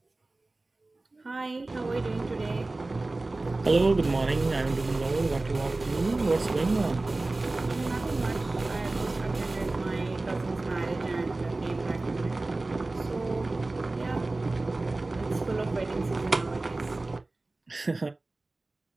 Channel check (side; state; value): left; quieter; 3.1 dB